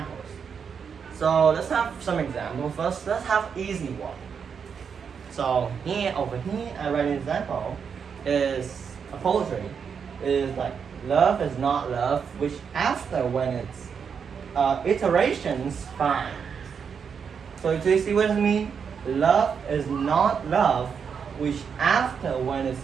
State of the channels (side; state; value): left; quieter; 6.6 dB